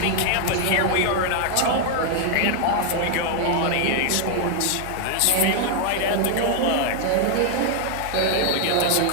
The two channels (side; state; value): both; different; correlation 0.00